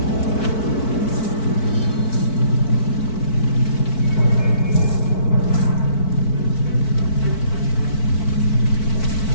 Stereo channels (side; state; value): right; late; 4.5 ms